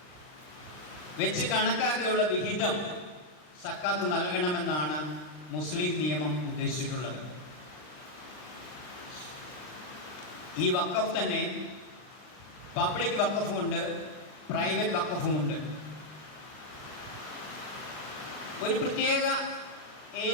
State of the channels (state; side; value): late; right; 39 ms